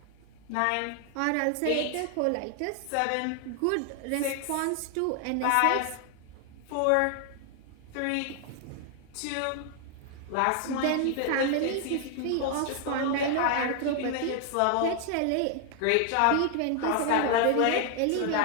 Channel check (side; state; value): both; different; correlation 0.00